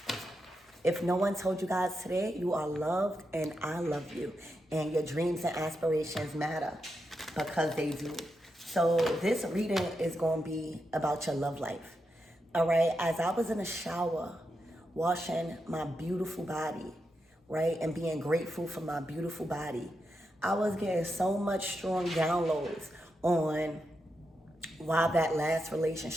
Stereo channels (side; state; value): both; normal; correlation 0.86